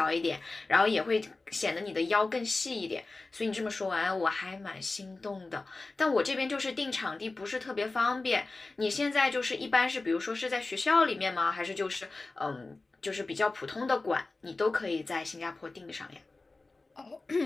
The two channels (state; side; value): quieter; right; 3.4 dB